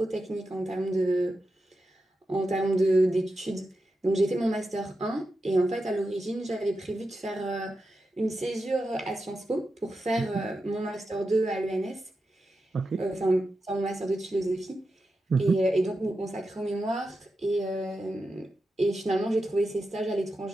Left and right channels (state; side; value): normal; both; correlation 0.89